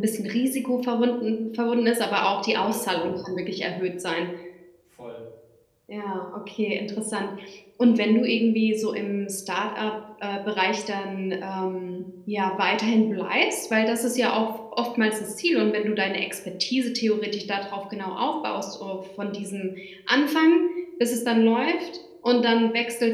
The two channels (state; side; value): identical; both; correlation 1.00